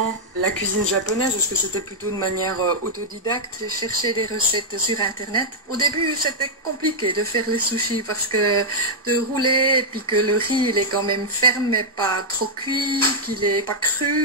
la cuisine japonaise? Est-ce que c'était plutôt de manière autodidacte? J'ai cherché des recettes sur internet. Au début, c'était compliqué de faire les sushis parce que de rouler et puis que le riz il est quand même ferme mais pas trop cuit, qu'il est pas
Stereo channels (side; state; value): both; normal; correlation -0.05